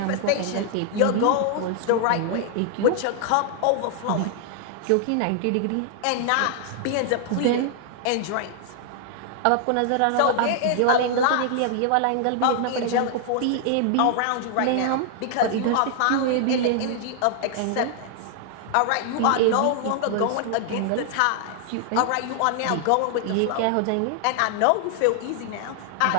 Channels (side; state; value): both; different; correlation 0.00